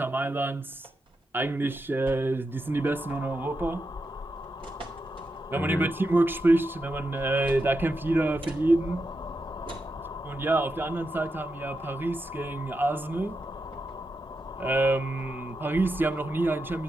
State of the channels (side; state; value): both; normal; correlation 0.87